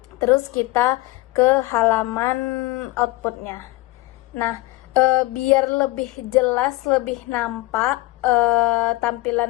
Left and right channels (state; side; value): quieter; right; 20.2 dB